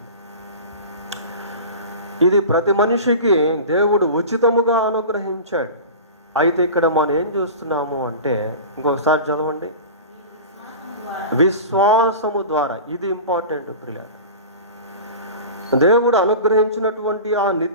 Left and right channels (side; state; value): both; inverted; correlation -0.34